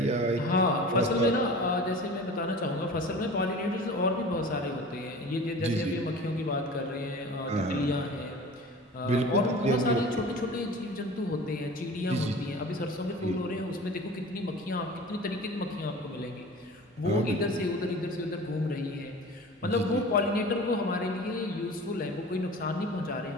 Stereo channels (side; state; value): both; normal; correlation 0.39